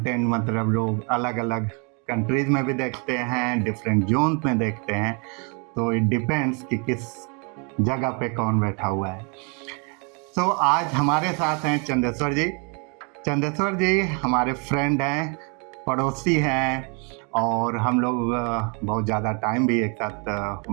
मतलब लोग अलग अलग कंट्रीज में भी देखते हैं, डिफरेंट जोन में देखते हैं, तो इट डिपेंड्स कि किस जगह पे कौन बैठा हुआ है। तो आज हमारे साथ हैं चंदेश्वर जी। चंदेश्वर जी हमारे फ्रेंड हैं, पड़ोसी हैं, और हम लोग बहुत ज़्यादा टाइम भी एक साथ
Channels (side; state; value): left; quieter; 35.0 dB